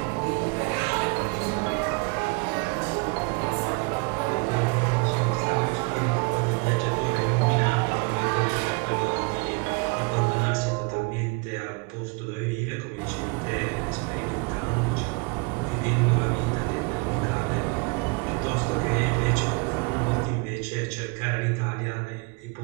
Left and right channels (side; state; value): left; quieter; 30.3 dB